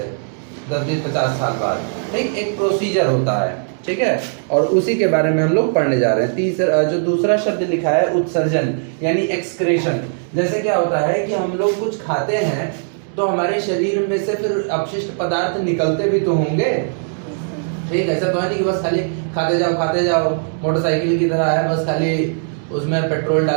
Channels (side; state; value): left; silent; digital silence